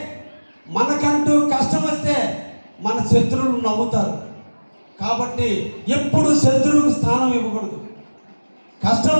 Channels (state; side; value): inverted; both; correlation -1.00